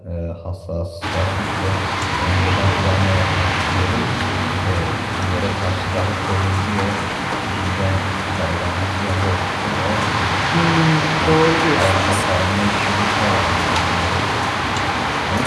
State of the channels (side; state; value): both; identical; correlation 1.00